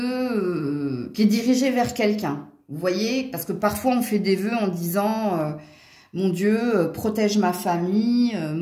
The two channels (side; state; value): both; identical; correlation 1.00